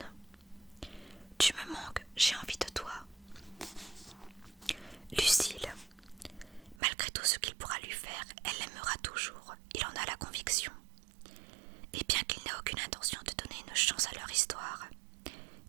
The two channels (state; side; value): drops out; left; at 6.8 s